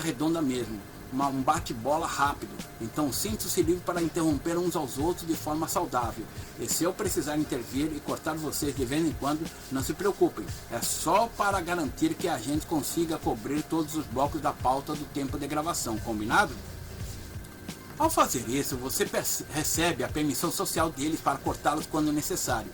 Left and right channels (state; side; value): identical; both; correlation 1.00